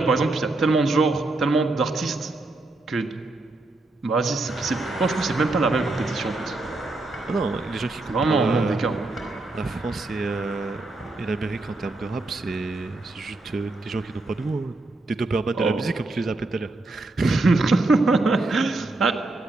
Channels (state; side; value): quieter; left; 3.1 dB